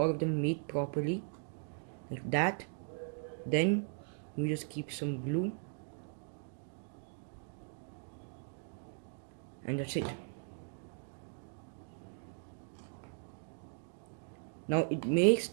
of them meet properly, like that. Then you just keep some glue and that's it. Now it may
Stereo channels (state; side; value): silent; left; 52 dB below the other